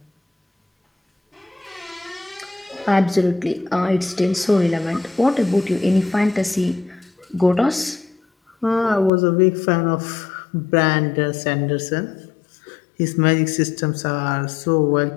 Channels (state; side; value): drops out; right; at 9.1 s